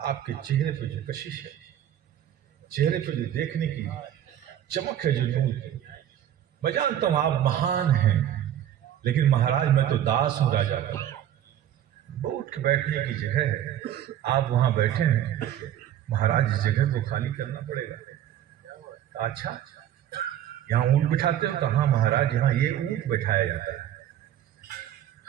आपके चेहरे पे जो कशिश है, चेहरे पे जो देखने की चमक है, जो नूर की, मैं जानता हूं आप महान हैं, लेकिन महाराज मैं तो दास हूं राजा का, वो उठ के बैठने की जगह है, आप वहां बैठे हैं, महाराज इस जगह को खाली करना पड़ेगा। अच्छा, यहाँ ऊंट बिठाते हो? कहा महाराज यहाँ ये ऊंट बैठाया जाता है।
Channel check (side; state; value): left; quieter; 11.1 dB